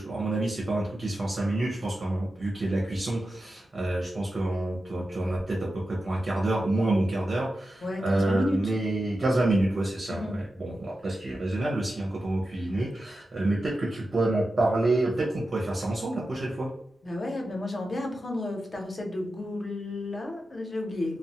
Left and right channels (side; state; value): both; normal; correlation 0.91